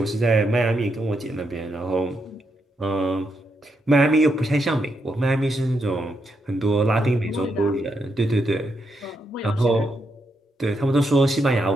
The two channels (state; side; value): normal; both; correlation 0.81